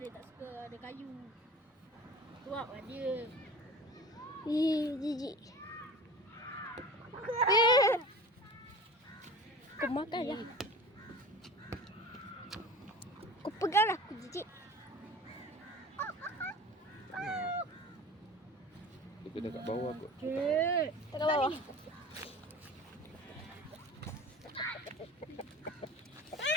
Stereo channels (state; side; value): normal; both; correlation 0.37